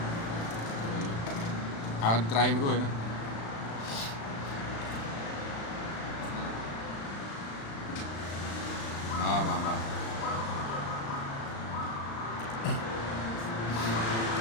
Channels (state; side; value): late; right; 35 ms